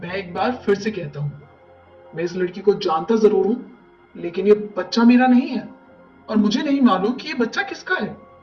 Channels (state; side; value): identical; both; correlation 1.00